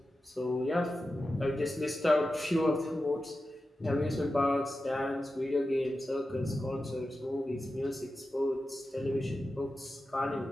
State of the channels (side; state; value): both; normal; correlation 0.92